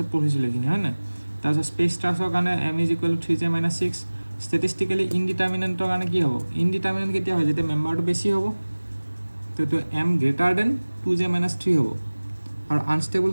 পঢ়িছিলোঁ এইখিনি হয় নাই তাৰপিছত স্পেচ ট্ৰাষ্টৰ কাৰণে m is equal to 3j minus 6 ষ্টেটিষ্টিকেলি ইনডিটাৰমিনেণ্টৰ কাৰণে কি হ'ব ইনডিটাৰমিনেণ্ট কেতিয়া হয় যেতিয়া মেম্বাৰটো বেছি হ'ব তো এইটো m greater than 2j minus 3 হ'ব আৰু আনষ্টেবল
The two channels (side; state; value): both; inverted; correlation -1.00